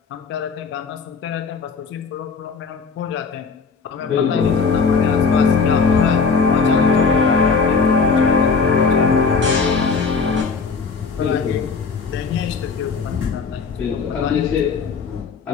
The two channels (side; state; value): right; quieter; 5.1 dB